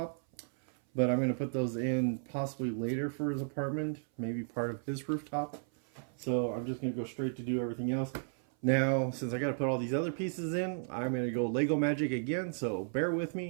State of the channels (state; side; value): silent; left; 55 dB below the other